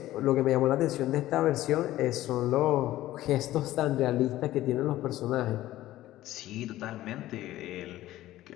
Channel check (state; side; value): quieter; right; 15.1 dB